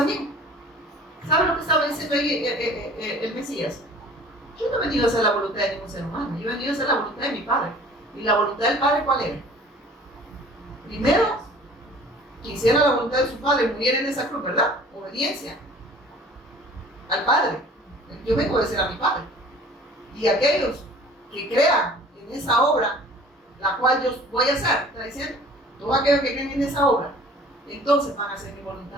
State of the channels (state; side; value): normal; both; correlation 0.48